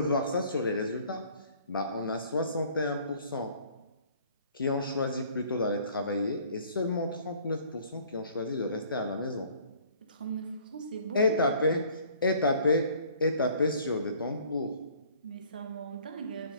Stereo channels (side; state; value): both; inverted; correlation -0.55